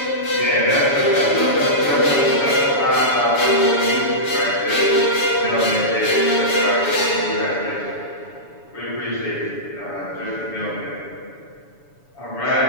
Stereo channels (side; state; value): right; late; 7.0 ms